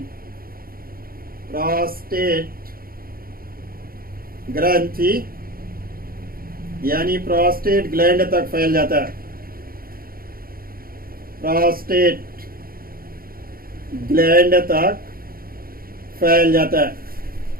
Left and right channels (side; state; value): left; late; 0.43 ms